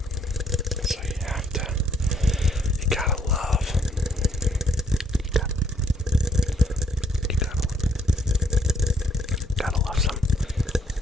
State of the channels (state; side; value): normal; both; correlation 0.67